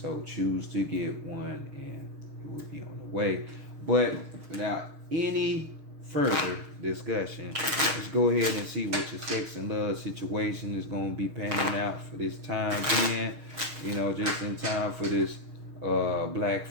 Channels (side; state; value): left; late; 6.5 ms